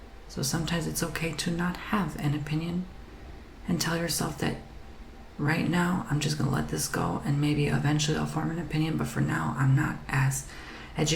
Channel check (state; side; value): identical; both; correlation 1.00